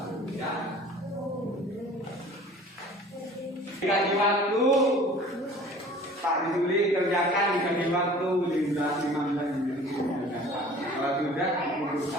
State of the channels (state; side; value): normal; both; correlation 0.46